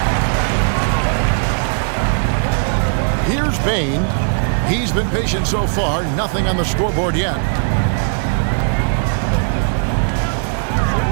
Here's Bane. He's been patient so far. Nothing on the scoreboard yet.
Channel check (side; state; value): left; silent; 68 dB below the other